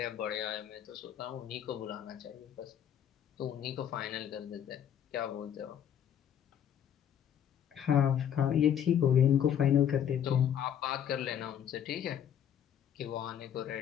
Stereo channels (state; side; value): quieter; right; 9.4 dB